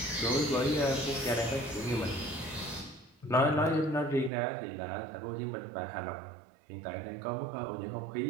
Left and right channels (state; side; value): drops out; left; at 4.3 s